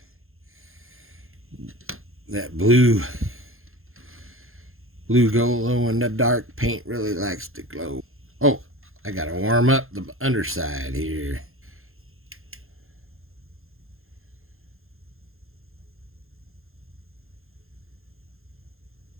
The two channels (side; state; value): left; late; 0.61 ms